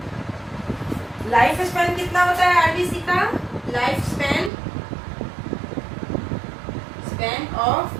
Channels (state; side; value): drops out; left; at 4.5 s